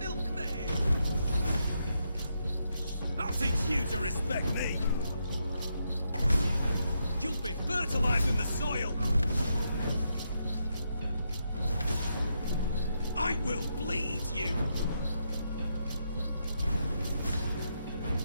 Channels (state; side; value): inverted; both; correlation -0.81